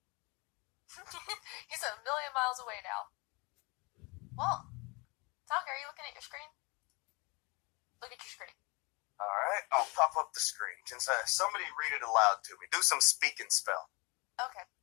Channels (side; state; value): right; quieter; 27.6 dB